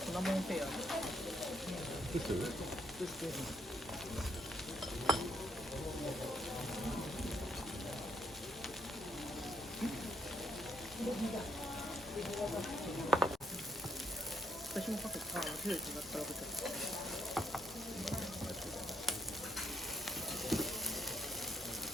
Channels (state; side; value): normal; both; correlation 0.71